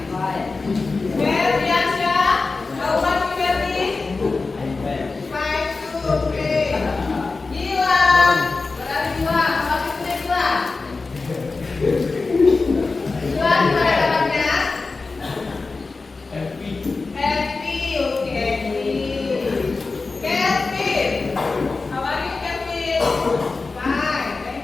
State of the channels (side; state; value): right; quieter; 3.9 dB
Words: Ferdiansyah, how are you, Ferdi? Fine too. Oke. Gilang, berada Gilang. How are you today, Gilang? Gilang, gimana kabarnya? Happy. Happy, oke, happy. Kevin, how are you, Kevin? Fine,